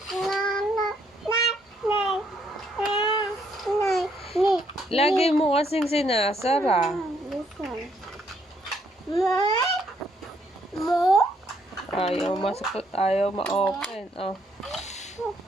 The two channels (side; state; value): both; normal; correlation 0.71